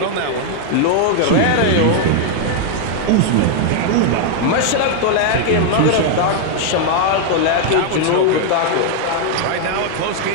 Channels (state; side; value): different; both; correlation 0.00